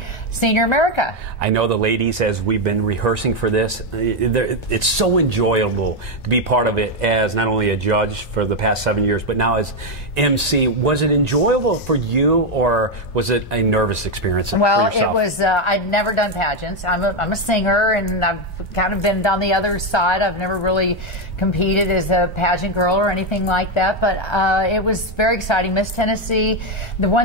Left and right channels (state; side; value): normal; both; correlation 0.05